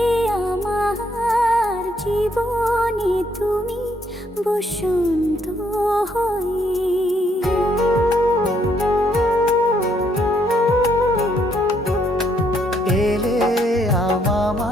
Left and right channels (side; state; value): both; normal; correlation 0.71